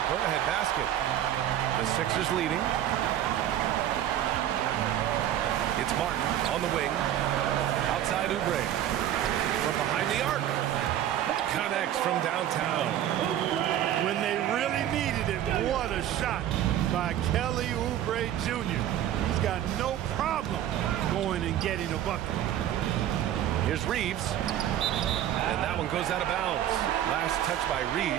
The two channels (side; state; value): left; quieter; 11.5 dB